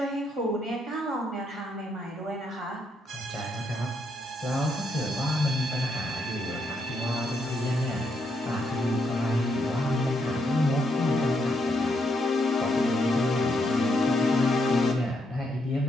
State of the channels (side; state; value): both; normal; correlation 0.77